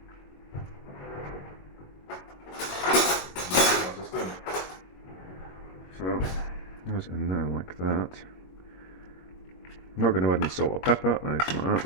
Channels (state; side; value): late; right; 22 ms